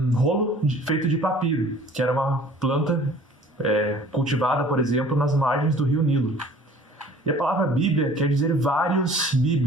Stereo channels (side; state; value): both; normal; correlation 0.50